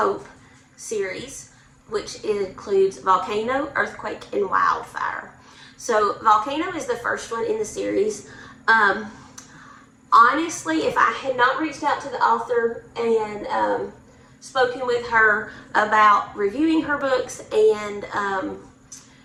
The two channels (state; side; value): identical; both; correlation 1.00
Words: series, which includes Volcano, Earthquake, and Wildfire. So Volcano is the first one in the series. Honestly, if I had not reached out to the author and spoken with her about reviewing her books and